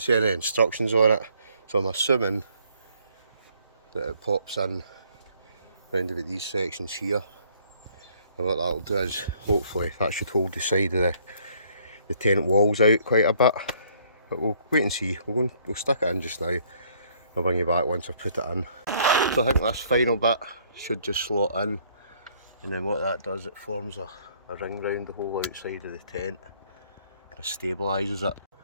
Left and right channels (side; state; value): both; inverted; correlation -0.63